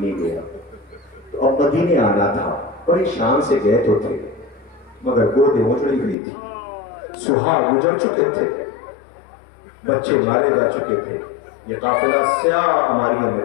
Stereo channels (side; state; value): right; drops out; at 6.2 s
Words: گیا۔ تو اب مدینے آنا تھا، بڑی شان سے گئے تو تھے، مگر گودیں اجڑی ہوئی تھی، سہاگ گزر چکے تھے، بچے مارے جا چکے تھے۔ یہ قافلہ سیاہ ہماریوں میں